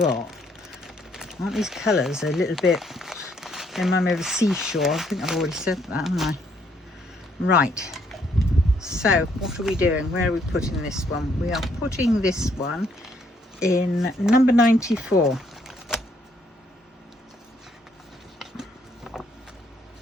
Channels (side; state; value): both; normal; correlation 0.69